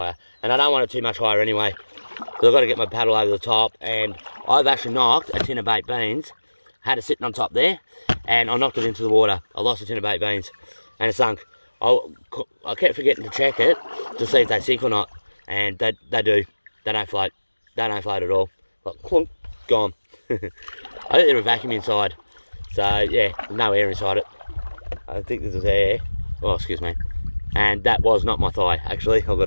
And I don't want it too much higher anyway. So I've got to get my paddle over the top. And I've actually knocked a tin of baked beans. Had it sitting on top there. And I knocked it into the water. I lost a tin of baked beans. And it sunk. I kept forgetting to check it to see if they sink or not. And they do. They don't float. They don't float at all. Like, clunk, gone. I think there's a vacuum inside. So, yeah, there's no air inside it. I think this is air. Oh, excuse me. And that was not my thigh, actually, I've got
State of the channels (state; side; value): inverted; both; correlation -1.00